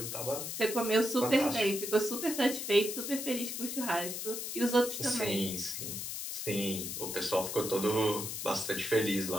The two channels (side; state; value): left; noise; hiss, 5 dB below the sound